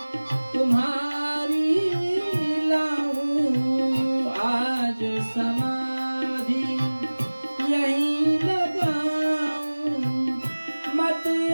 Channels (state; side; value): inverted; both; correlation -1.00